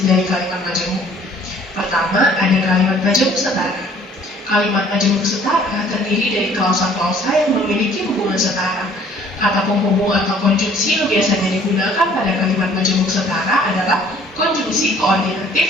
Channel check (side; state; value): both; normal; correlation 0.56